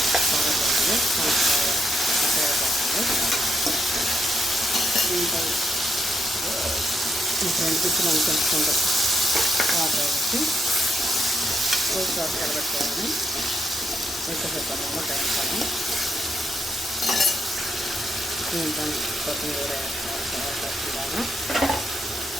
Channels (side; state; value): both; normal; correlation 0.79